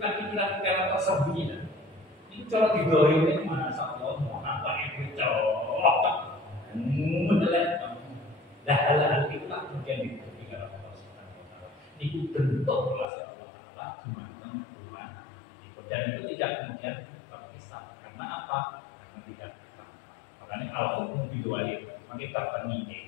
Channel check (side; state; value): right; drops out; at 13.1 s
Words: pikiran-pikiran tersembunyi kan ini kalau didoain ini mana Allah mau apa itu colok mendelek dah hal-hal itu lah kemudian diberikan Allah Subhanahu wa Ta'ala. Itu bentuk relasi Allah Ta'ala dimana Tuhan dan itu tidak kemudian berkisah karena apa? Karena tidak ditangkap. Makanya al-hukmu bidu'ali makanya tertemini